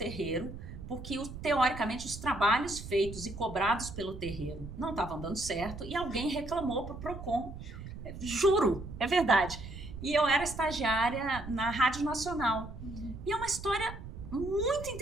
porque teoricamente os trabalhos feitos e cobrados pelo terreiro não estavam dando certo e alguém reclamou para o Procon. Juro, é verdade. E eu era estagiária na Rádio Nacional. E é uma história muito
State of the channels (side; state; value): right; noise; rumble, 11 dB below the sound